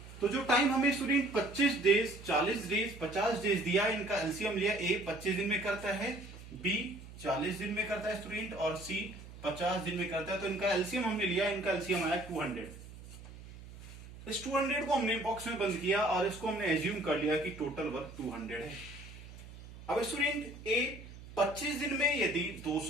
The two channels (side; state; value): right; noise; hum, 16 dB below the sound